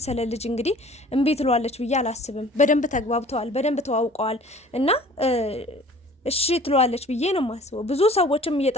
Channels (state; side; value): normal; both; correlation 0.49